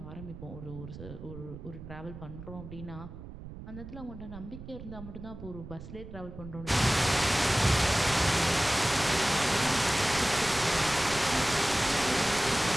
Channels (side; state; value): right; noise; rumble, 13 dB below the sound